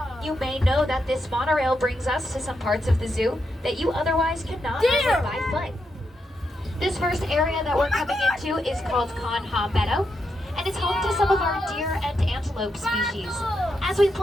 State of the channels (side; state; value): both; normal; correlation 0.83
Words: You may know that this monorail brings us to some parts of the zoo that you otherwise cannot visit by foot. This first area that we're coming into is called Conha Meadow, and it's home to some of our deer and antelope species. As we